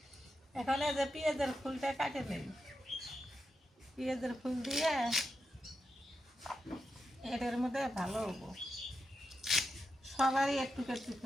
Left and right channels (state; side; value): normal; both; correlation 0.87